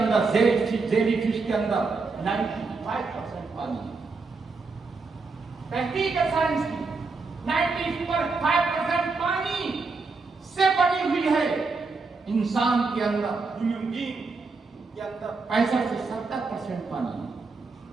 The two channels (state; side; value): quieter; left; 4.2 dB